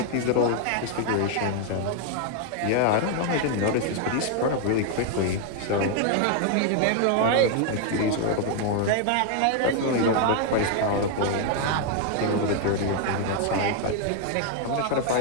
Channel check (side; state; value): both; different; correlation 0.00